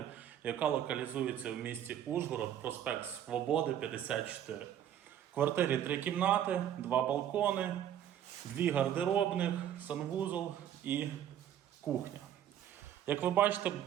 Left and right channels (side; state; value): left; quieter; 10.5 dB